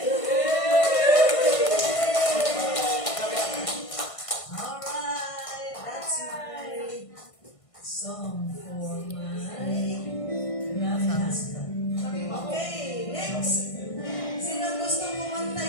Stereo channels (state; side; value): late; right; 1.6 ms